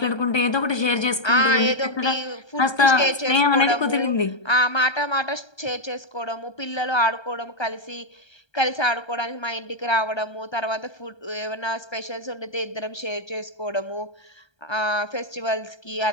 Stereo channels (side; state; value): right; late; 1.3 ms